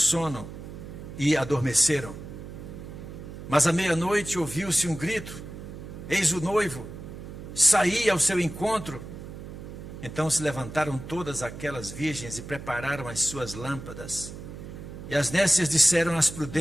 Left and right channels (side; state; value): right; noise; hum, 11 dB below the sound